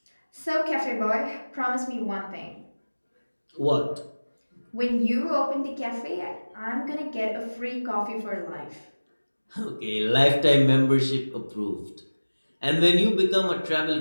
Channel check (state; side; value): inverted; both; correlation -1.00